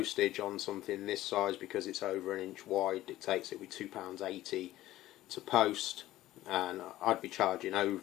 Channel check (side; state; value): right; quieter; 15.3 dB